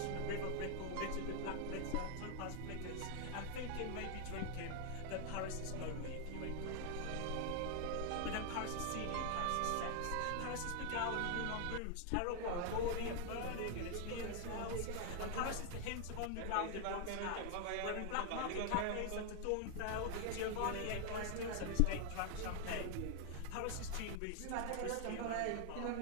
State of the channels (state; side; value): different; both; correlation 0.00